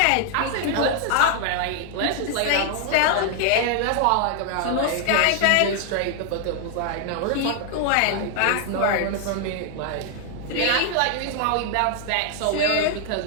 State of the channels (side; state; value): both; different; correlation 0.00